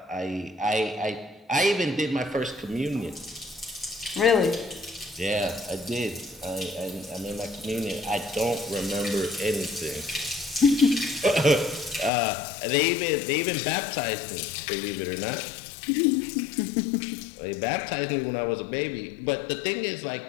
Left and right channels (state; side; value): drops out; right; at 12.1 s